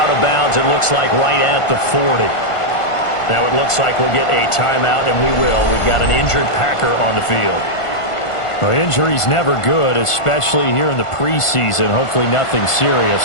of bounds, it looks like, right at the 40. Now it looks like we'll get a timeout, and we will. We've got an injured Packer on the field. Well, injury's never good, especially here in the preseason. Hopefully nothing serious.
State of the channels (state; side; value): late; right; 1.5 ms